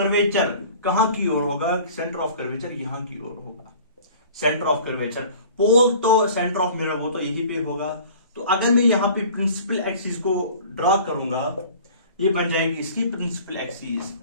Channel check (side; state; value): both; inverted; correlation -0.46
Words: कहां की ओर होगा? सेंटर ऑफ कर्वेचर यहां की ओर होगा। सेंटर ऑफ कर्वेचर पोल तो सेंटर ऑफ मिरर वो तो यहीं पे होगा। तो अगर मैं यहां पे प्रिंसिपल एक्सिस को ड्रॉ करूंगा, ये बन जाएगी इसकी प्रिंसिपल एक्सिस।